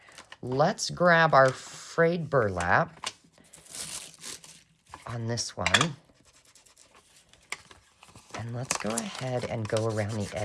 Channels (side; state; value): both; identical; correlation 1.00